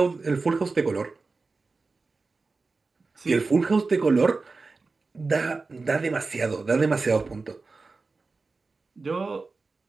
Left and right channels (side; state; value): left; quieter; 4.0 dB